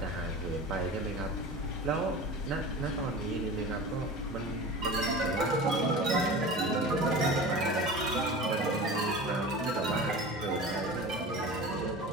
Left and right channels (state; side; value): normal; both; correlation 0.34